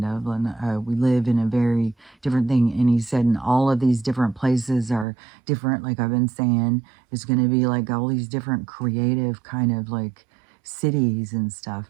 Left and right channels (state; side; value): drops out; left; at 5.1 s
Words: of, and we live in a very different thing. And he said, and all of these different places are different, like I've been saying. It's going to be like all these different creative kind of like cities and stuff,